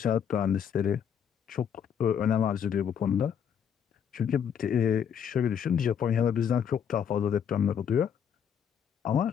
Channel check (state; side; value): quieter; right; 8.1 dB